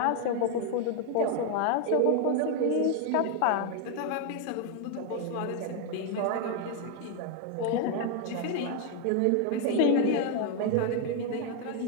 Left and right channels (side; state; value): both; different; correlation 0.00